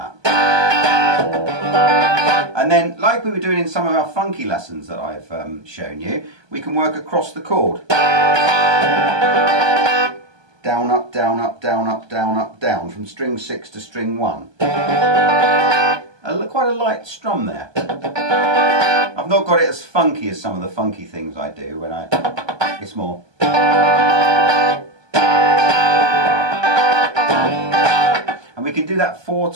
And then, like we were doing in some of our funky lessons that I've shown you, we can work across the chord. Down, up, down, up, down, up, down, up, down, from string 6 to string 1. Quite a light strum there. I've not got it as funky as some of the funky things I do when it's more. And we can do that 4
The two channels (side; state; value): left; late; 1.2 ms